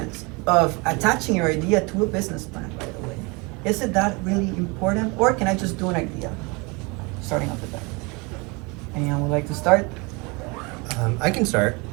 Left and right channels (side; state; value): left; quieter; 28.1 dB